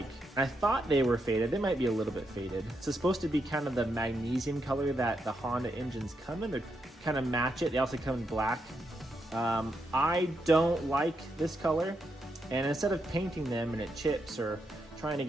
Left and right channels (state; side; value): normal; both; correlation 0.82